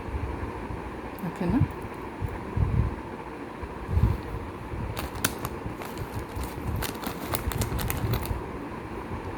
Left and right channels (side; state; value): both; identical; correlation 1.00